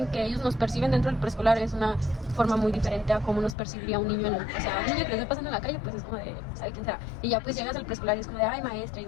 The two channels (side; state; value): right; drops out; at 3.6 s